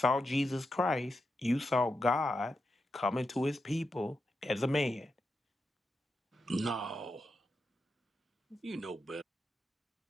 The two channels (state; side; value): normal; both; correlation 0.87